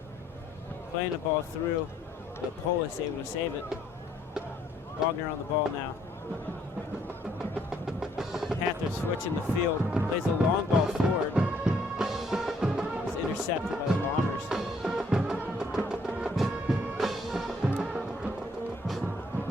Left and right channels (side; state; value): both; normal; correlation 0.66